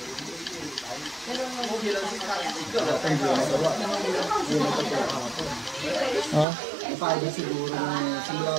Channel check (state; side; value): drops out; left; at 6.5 s